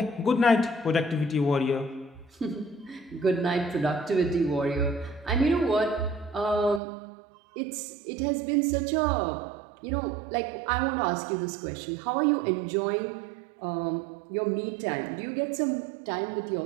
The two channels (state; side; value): drops out; left; at 6.8 s